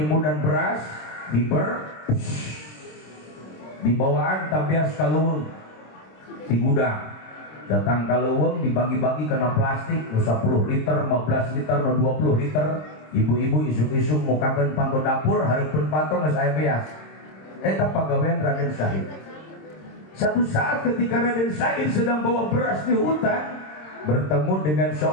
beras di bawaan tabias kaleuweung di gudang datang kaleuweung dibagi-bagi kena plastik 10 liter 15 liter 20 liter ibu-ibu isuk-isuk mukakeun panto dapur hareupeun panto geus aya beas eta pagawean Raden Syahid satu saat ketika Raden Syahid sedang bawa beras di hutan bertemu dengan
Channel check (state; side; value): late; right; 26 ms